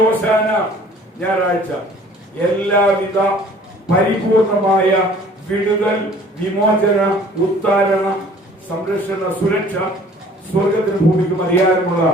ഹോശാന ഞായറാഴ്ച എല്ലാവിധ പരിപൂർണമായ വിടുതൽ, വിമോചന, ഉത്താരണ, സംരക്ഷണ, സുരക്ഷ സ്വർഗത്തിന് ഭൂമിക്കും അധികാരമുള്ള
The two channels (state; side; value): normal; both; correlation 0.52